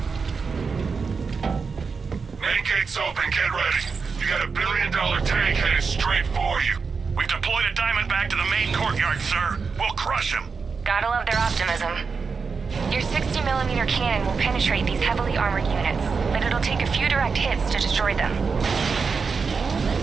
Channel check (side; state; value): left; quieter; 5.2 dB